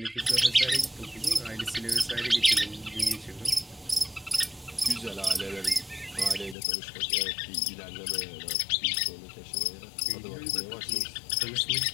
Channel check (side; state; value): right; drops out; at 6.6 s